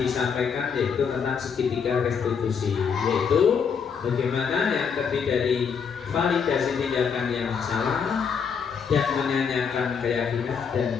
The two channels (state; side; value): quieter; right; 6.4 dB